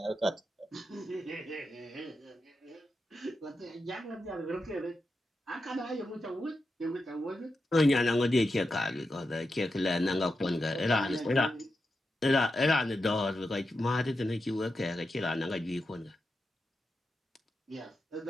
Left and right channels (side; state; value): both; normal; correlation 0.88